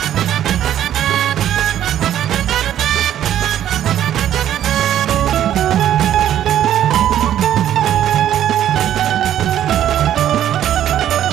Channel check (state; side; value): quieter; left; 11.2 dB